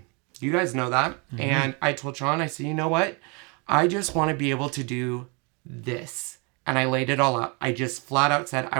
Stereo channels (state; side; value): quieter; left; 32.1 dB